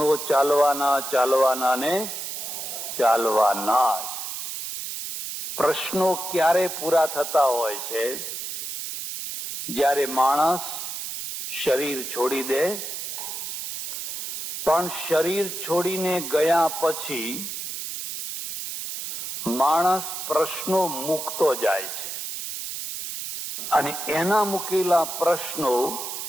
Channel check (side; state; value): right; noise; hiss, 6 dB below the sound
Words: ચાલવાના ને ચાલવાના જ. પ્રશ્નો ક્યારે પૂરા થતા હોય છે? જ્યારે માણસ શરીર છોડી દે. પણ શરીર છોડીને ગયા પછી માણસ પ્રશ્નો મૂકતો જાય છે અને એના મૂકેલા પ્રશ્નો